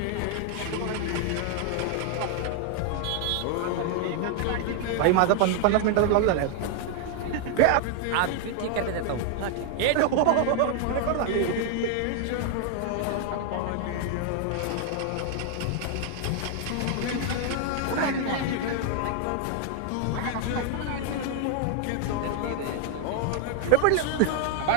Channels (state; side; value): different; both; correlation 0.00